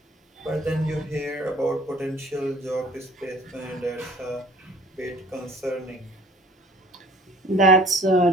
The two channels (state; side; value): normal; both; correlation 0.50